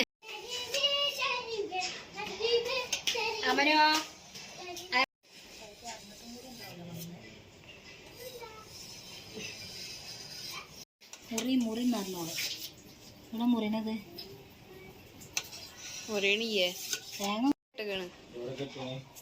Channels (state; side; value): identical; both; correlation 1.00